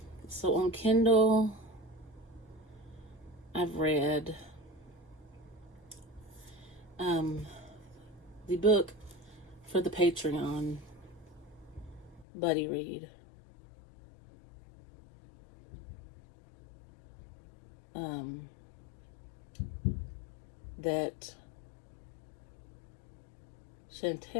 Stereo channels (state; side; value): drops out; right; at 12.2 s